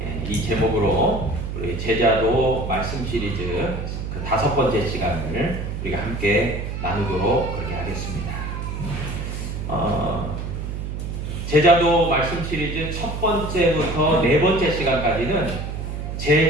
이 제목으로 우리 제자도 말씀 시리즈 그 5번째 시간을 우리가 함께 나누도록 그렇게 하겠습니다. 제자도 말씀 시리즈 첫 번째부터 네 번째 시간까지는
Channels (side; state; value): right; noise; hum, 5 dB below the sound